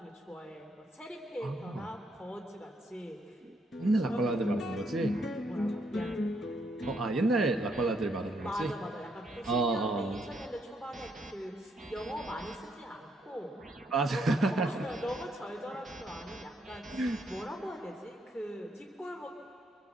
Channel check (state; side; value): normal; both; correlation 0.74